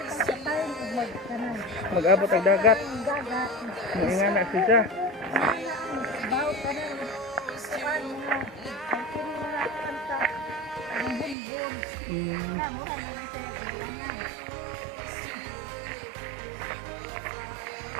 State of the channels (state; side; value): drops out; left; at 11.4 s